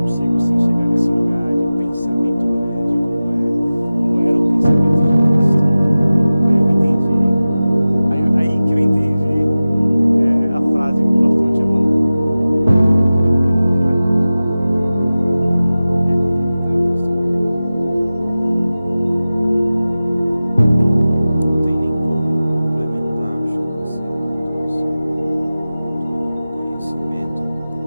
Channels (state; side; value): inverted; both; correlation -0.96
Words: sim chegar nesse lugar de pensamento grande, como era o pensamento de Cristo. Aí eu entendi, aí que eu entendi a frase que o pastor tinha mandado. Por aí. Quer complementar, pastor? Não tem nem como complementar, acho que você trouxe todo o conhecimento,